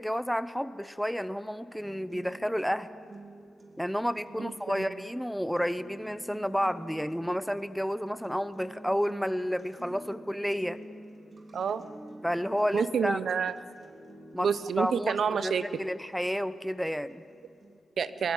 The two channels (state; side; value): normal; both; correlation 0.93